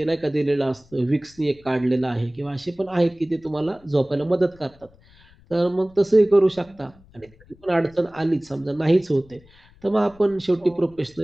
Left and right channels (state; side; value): noise; left; rumble, 27 dB below the sound